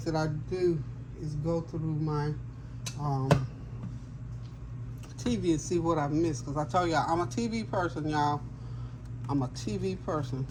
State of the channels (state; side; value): identical; both; correlation 1.00